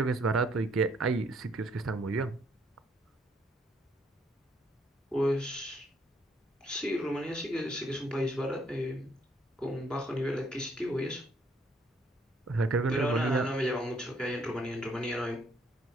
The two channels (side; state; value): both; normal; correlation 0.67